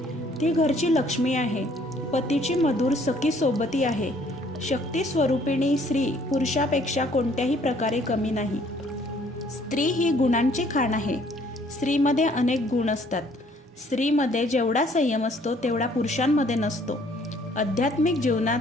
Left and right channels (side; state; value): both; normal; correlation 0.61